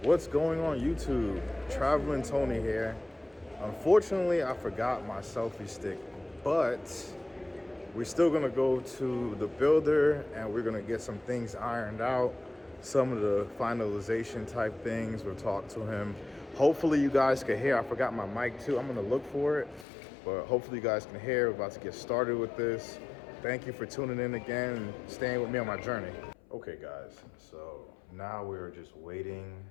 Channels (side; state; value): right; drops out; at 19.9 s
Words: What's going on YouTube? Traveling Tony here. Unfortunately, I forgot my selfie stick, but we're still gonna go to the builder and we're gonna get some things ironed out, some of the finalization type things. We'll talk to him. Hopefully you guys can hear. I forgot my mic too. I'm gonna look for it, but hopefully you guys can hear. We're about to get started with this. Thank you for tuning in again and staying with me on my journey. Okay guys, so now we're just waiting